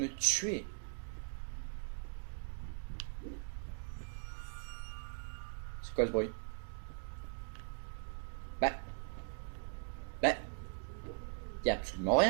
me tuer. C'est quoi ce bruit? Y a absolument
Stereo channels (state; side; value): silent; left; digital silence